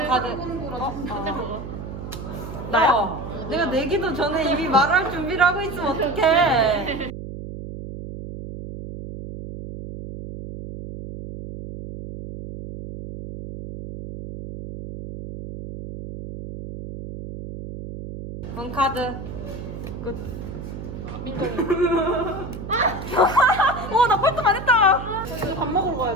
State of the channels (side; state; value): right; noise; hum, 9 dB below the sound